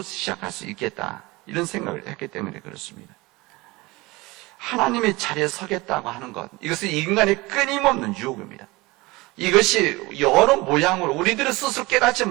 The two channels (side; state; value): left; quieter; 22.4 dB